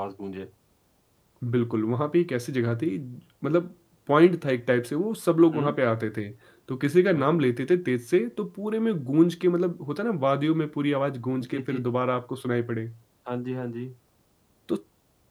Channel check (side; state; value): both; identical; correlation 1.00